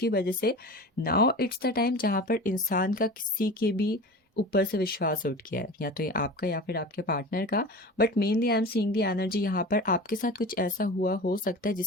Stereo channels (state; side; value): normal; both; correlation 0.34